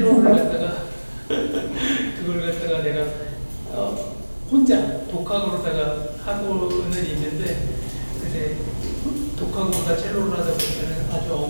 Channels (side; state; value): both; inverted; correlation -1.00